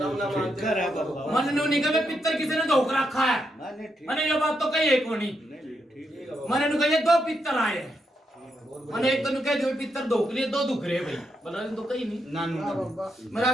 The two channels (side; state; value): both; normal; correlation 0.81